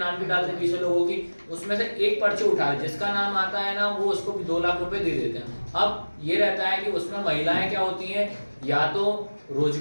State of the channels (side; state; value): both; inverted; correlation -1.00